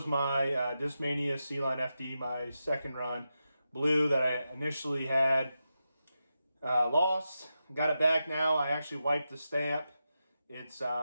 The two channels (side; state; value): both; inverted; correlation -0.89